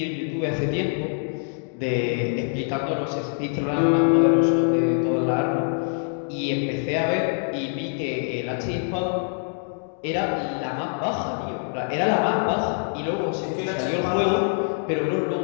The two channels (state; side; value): silent; right; 62 dB below the other